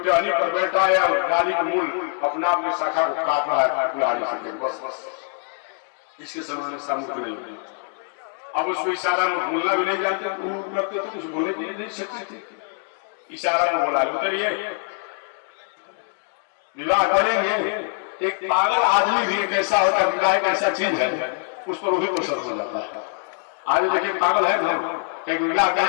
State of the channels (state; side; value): silent; right; 56 dB below the other